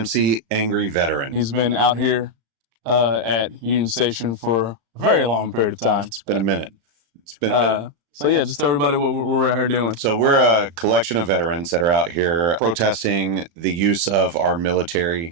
He's been out here at Union Station for a very long period of time. It's been a minute. So yeah, just tell everybody what we're out here doing. So we're a collection of veterans that are out here protesting the use of our military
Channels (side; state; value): left; late; 35 ms